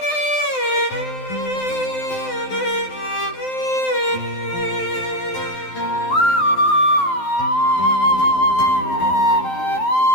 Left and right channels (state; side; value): late; right; 12 ms